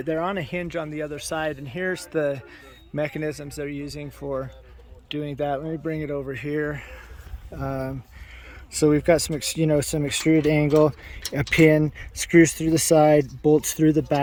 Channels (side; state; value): both; identical; correlation 1.00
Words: They're on a hinge on the other side, and here's the mechanisms they're using for doing that. Let me bring it over here. So we've got some extruded angle, a pin, screws through the side, bolts through the